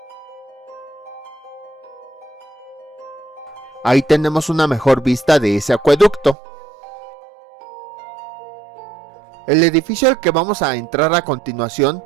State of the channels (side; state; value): left; drops out; at 6.4 s